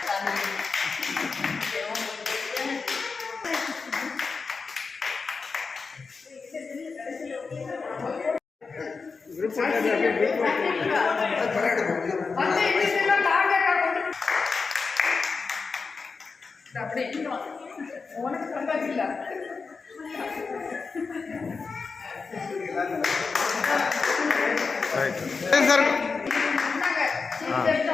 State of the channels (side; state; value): right; quieter; 4.7 dB